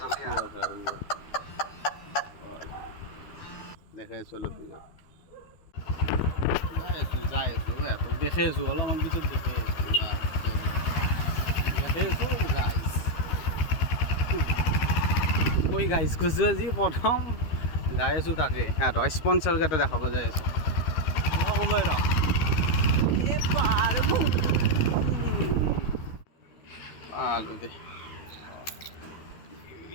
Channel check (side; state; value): right; late; 13 ms